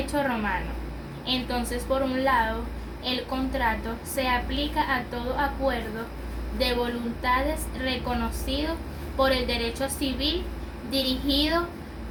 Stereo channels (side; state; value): both; identical; correlation 1.00